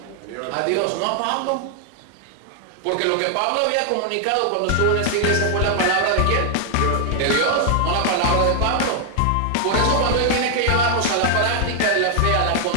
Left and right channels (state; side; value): different; both; correlation 0.00